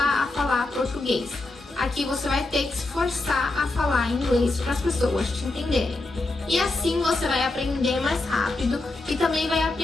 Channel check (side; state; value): right; quieter; 3.0 dB